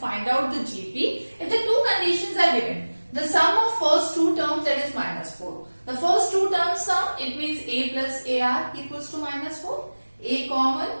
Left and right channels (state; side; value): inverted; both; correlation -1.00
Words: out the GP if the two conditions are given. The sum of first two terms, that is minus 4. The first two terms sum, it means A plus AR equals to minus 4. A common,